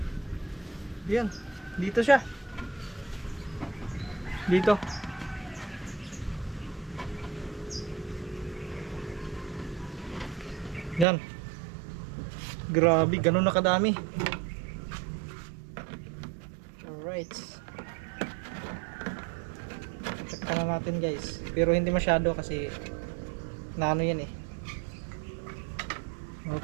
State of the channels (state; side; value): drops out; left; at 11.1 s